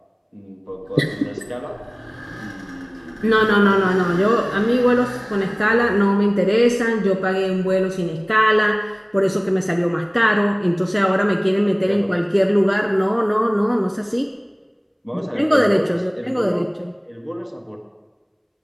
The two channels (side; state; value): both; identical; correlation 1.00